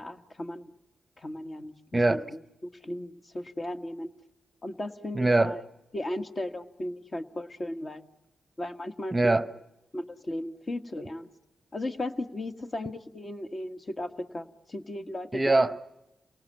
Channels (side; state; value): both; normal; correlation 0.96